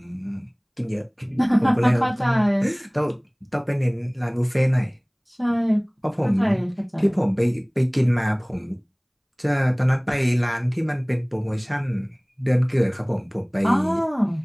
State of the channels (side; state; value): both; identical; correlation 1.00